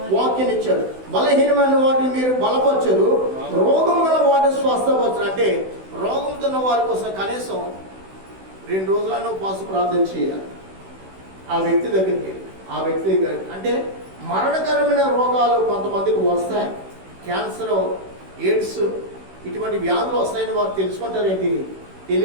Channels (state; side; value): late; left; 16 ms